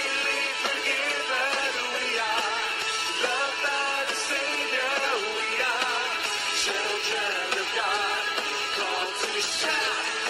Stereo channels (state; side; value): identical; both; correlation 1.00